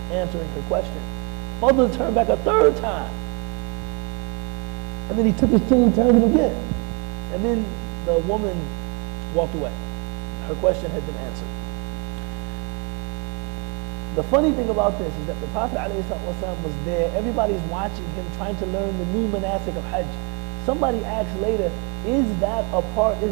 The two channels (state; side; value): quieter; left; 33.7 dB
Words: answering her question. Fadl turned back a third time. And then he took his chin and turned it again. And then the woman walked away. Her question had been answered. The funny thing about this is that the Prophet ﷺ was there. Everybody's watching him, trying to learn the new manasik of Hajj. Somebody asked later, is that a part